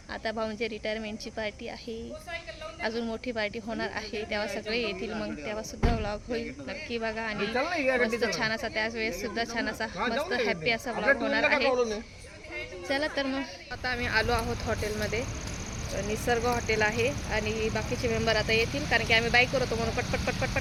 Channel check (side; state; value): both; identical; correlation 1.00